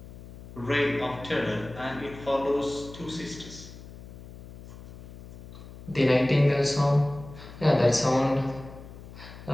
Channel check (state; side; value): noise; left; hum, 16 dB below the sound